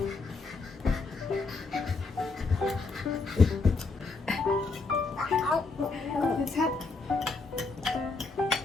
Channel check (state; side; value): quieter; right; 4.0 dB